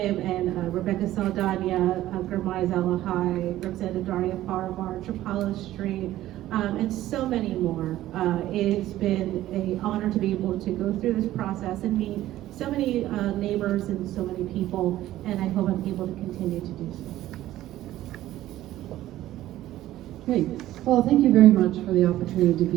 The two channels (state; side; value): quieter; left; 14.4 dB